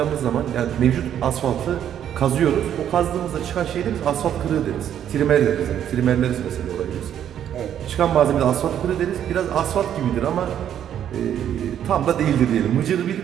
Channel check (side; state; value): left; quieter; 10.0 dB